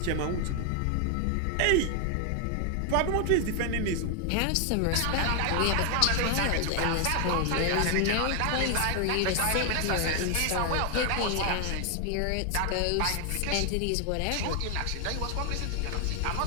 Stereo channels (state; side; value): different; both; correlation 0.00